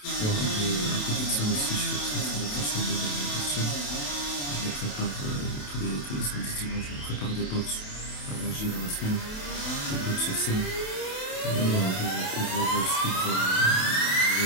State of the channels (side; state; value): right; late; 28 ms